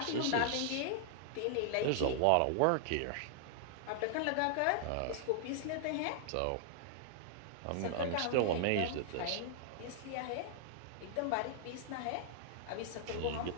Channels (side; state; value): both; different; correlation -0.01